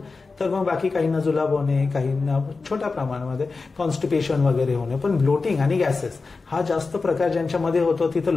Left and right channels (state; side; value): quieter; right; 4.1 dB